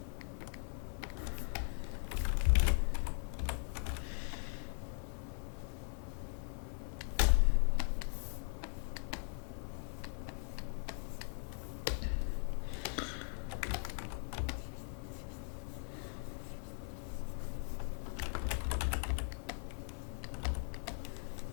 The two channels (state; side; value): silent; right; 51 dB below the other